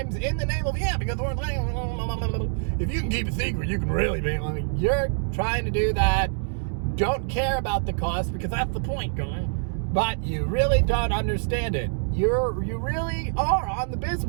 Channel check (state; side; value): silent; left; digital silence